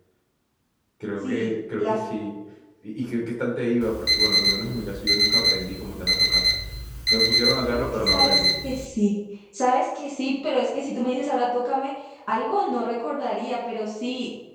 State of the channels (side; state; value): both; identical; correlation 1.00